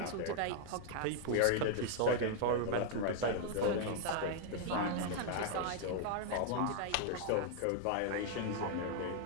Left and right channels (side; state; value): both; different; correlation -0.01